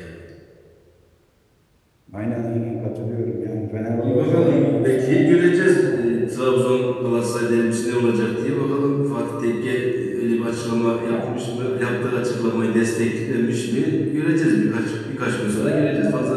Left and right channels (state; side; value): identical; both; correlation 1.00